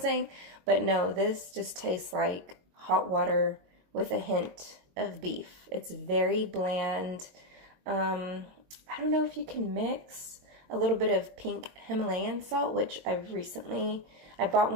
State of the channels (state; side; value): late; left; 22 ms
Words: But no, this just tastes like hot water with a hint of beef. It's very bland. I don't know if you can mix a little bit of pink Himalayan salt, which I bought